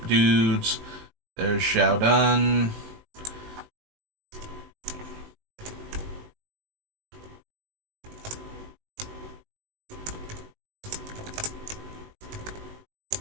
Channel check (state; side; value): late; left; 19 ms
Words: dudes. There's Xiaodun.